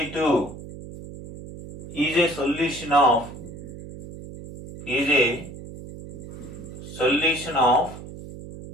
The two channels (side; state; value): right; noise; hum, 13 dB below the sound